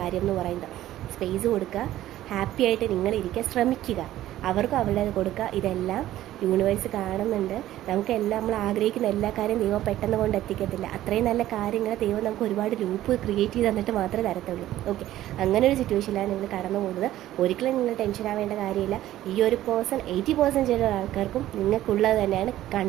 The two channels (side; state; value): left; quieter; 13.9 dB